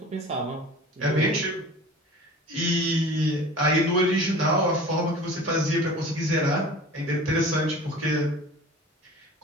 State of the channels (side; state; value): both; normal; correlation 0.40